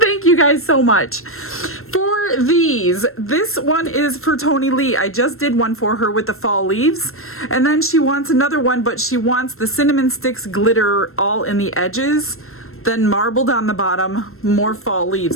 you guys so much. For these, this one is for Tony Lee. I just did one for her with the fall leaves, and then she wants another one, but she wants the cinnamon sticks glitter all in the edges, then marbled on the bottom, more fall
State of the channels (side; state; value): right; late; 0.62 ms